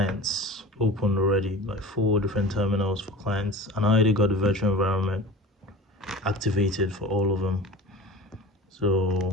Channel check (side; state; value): both; normal; correlation 0.37